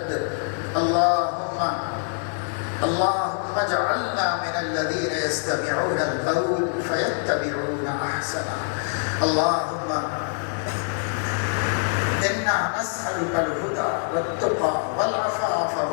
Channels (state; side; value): silent; right; 62 dB below the other